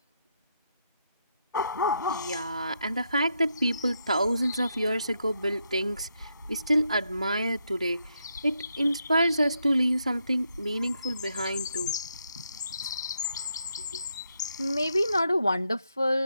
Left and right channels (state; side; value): inverted; both; correlation -0.80